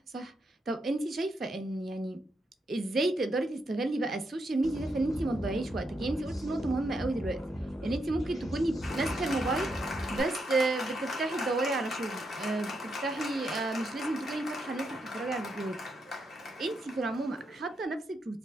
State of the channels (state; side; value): normal; both; correlation 0.81